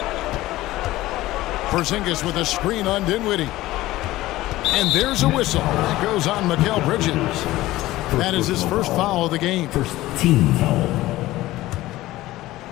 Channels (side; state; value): right; quieter; 16.9 dB